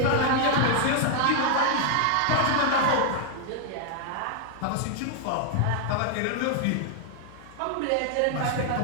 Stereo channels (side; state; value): both; different; correlation 0.00